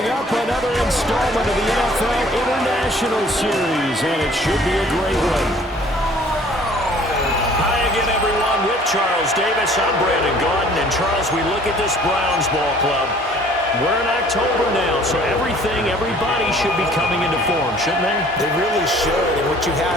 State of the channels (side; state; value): both; normal; correlation 0.54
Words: up, another installment of the NFL International Series, and it should be a great one. Hi again, everyone. With Charles Davis, I'm Brandon Gaudin. And Charles, we look at this Browns ball club. We're in October now, so everybody should be coming into form, shouldn't they? They really should, and what you